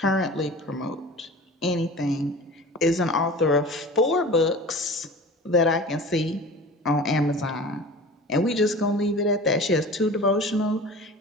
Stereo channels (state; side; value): normal; both; correlation 0.38